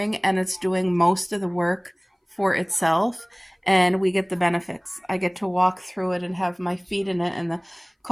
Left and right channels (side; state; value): both; identical; correlation 1.00